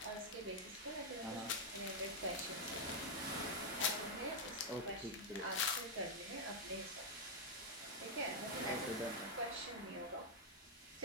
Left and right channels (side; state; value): both; normal; correlation -0.03